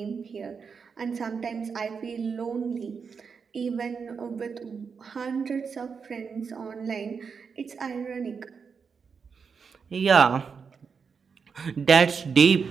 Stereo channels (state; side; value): quieter; left; 5.8 dB